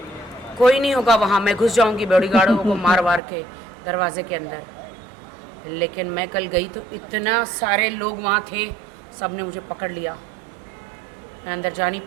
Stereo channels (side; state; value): left; drops out; at 3.2 s